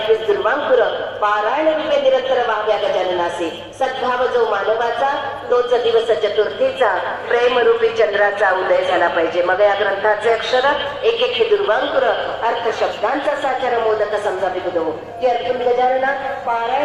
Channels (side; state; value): both; identical; correlation 1.00